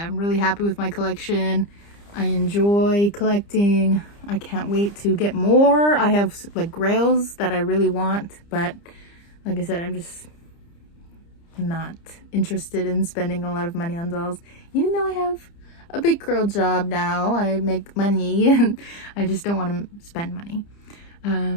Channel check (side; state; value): right; late; 30 ms